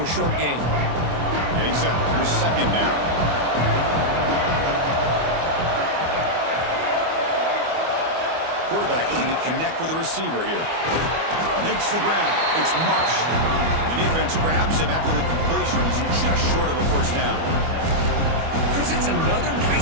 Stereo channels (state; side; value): late; left; 25 ms